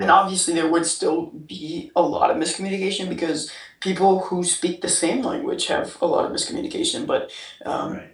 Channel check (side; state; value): both; identical; correlation 1.00